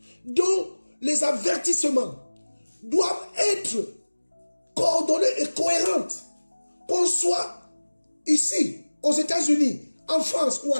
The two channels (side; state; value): both; inverted; correlation -1.00